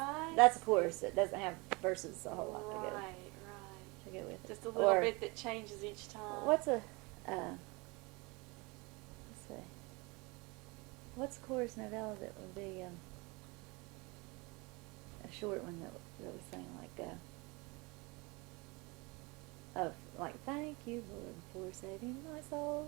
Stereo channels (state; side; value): quieter; left; 26.9 dB